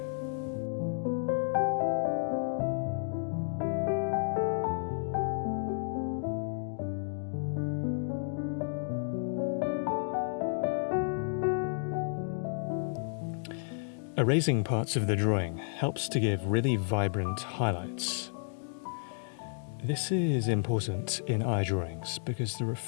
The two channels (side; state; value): right; silent; digital silence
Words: Erasing parts of the drawing helps to give really vibrant highlights. This is important in eye drawings because the